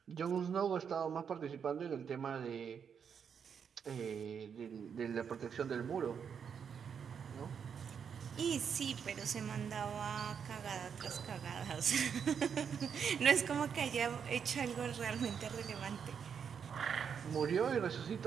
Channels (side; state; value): left; quieter; 7.2 dB